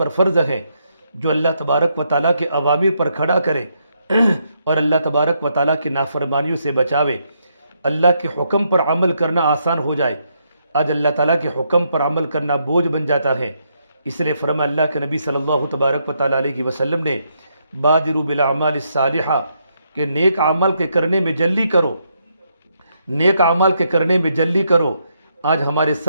فرض ہے جو اللہ تبارک و تعالیٰ کے اوامر پر کھڑا کرے اور اللہ تبارک و تعالیٰ کی نافرمانیوں سے بچاوے، اللہ کے حکم پر عمل کرنا آسان ہو جائے۔ آج اللہ تعالیٰ کے حکم پر عمل کرنا بوجھ بن جاتا ہے۔ اس لیے فرما اللہ کے نبی صلی اللہ تبارک و تعالیٰ علیہ وسلم نے بادروا بالاعمال الصالحہ کہ نیک عمل کے کرنے میں جلدی کرو، نیک عمل کے کرنے میں جلدی کرو۔ آج ہمارے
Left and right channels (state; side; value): inverted; both; correlation -0.77